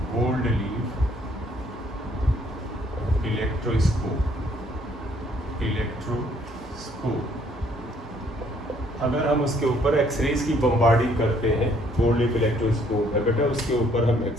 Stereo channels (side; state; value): both; normal; correlation 0.64